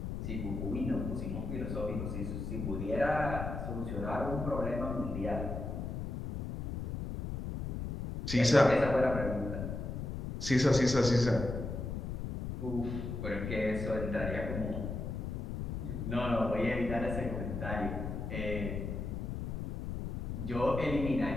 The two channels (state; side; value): noise; left; rumble, 4 dB below the sound